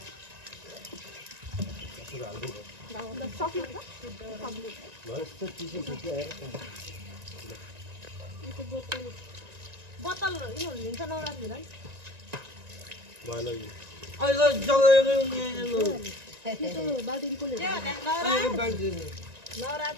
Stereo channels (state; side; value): late; left; 1.9 ms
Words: बोतल लिन्छ नौरात्रीमा